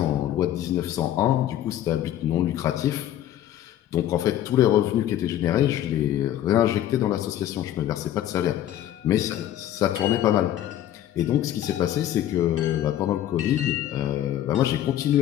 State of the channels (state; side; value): quieter; right; 12.1 dB